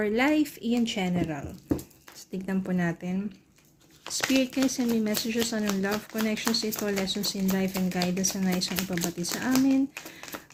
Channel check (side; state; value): both; identical; correlation 1.00